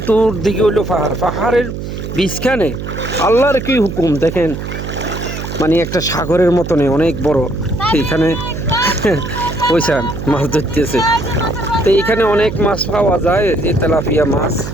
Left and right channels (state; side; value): noise; right; hum, 7 dB below the sound